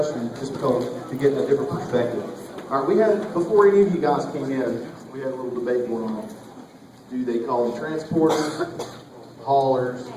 just because to get a different perspective. All right, we had, before any of you guys came in, we had a little debate going on. Do they call them transporters, haulers,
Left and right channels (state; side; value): identical; both; correlation 1.00